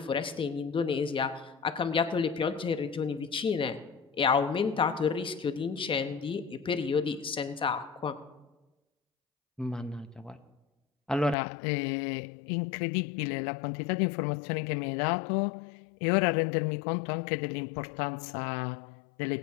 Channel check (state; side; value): drops out; right; at 11.4 s